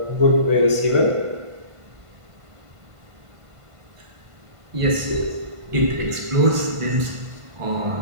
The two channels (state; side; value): late; left; 1.5 ms